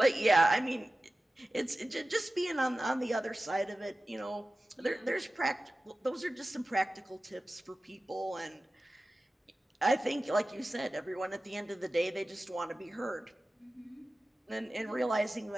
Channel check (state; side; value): normal; both; correlation 0.95